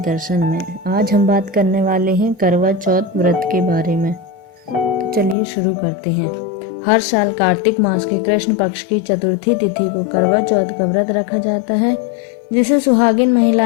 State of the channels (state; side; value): drops out; right; at 5.4 s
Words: में। आज हम बात करने वाले हैं करवा चौथ व्रत के बारे में। तो चलिए शुरू करते हैं। हर साल कार्तिक मास के कृष्ण पक्ष की चतुर्थी तिथि को करवा चौथ का व्रत रखा जाता है, जिसे सुहागिन